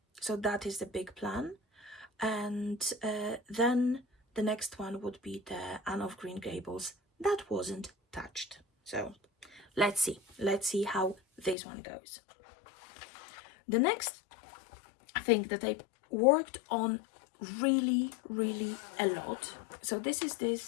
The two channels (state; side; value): drops out; right; at 11.6 s